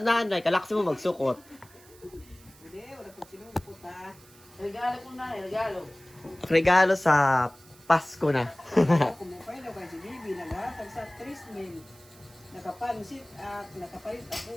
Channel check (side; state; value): right; noise; hiss, 25 dB below the sound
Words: nanay. Kalaksin mo magsukot. Hindi, wala kong sinungkot ha. Regalo ko na, regalo. Regalo sa Pasko na. Kumupay na kay si Bibi, naghatag sa 3,000. Nakapansit at nakapalit